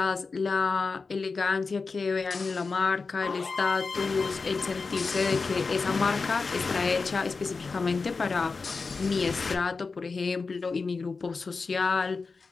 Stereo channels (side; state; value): right; quieter; 4.4 dB